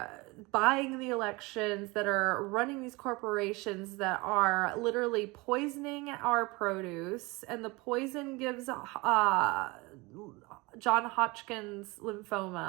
buying the elections, that are running these corporations, that are literally poisoning our produce. And the poison gives John Hodgkin's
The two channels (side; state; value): left; quieter; 24.6 dB